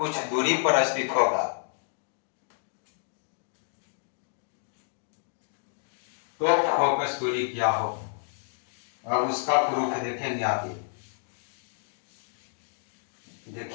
दूरी पर स्थित होगा तो फोकस दूरी क्या हो। अब उसका प्रूफ देखेंगे आगे।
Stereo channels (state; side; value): silent; right; digital silence